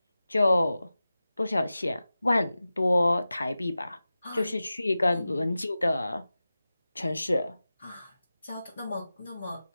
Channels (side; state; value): both; inverted; correlation -0.95